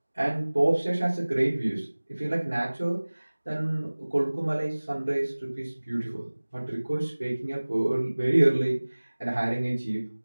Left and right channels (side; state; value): both; inverted; correlation -1.00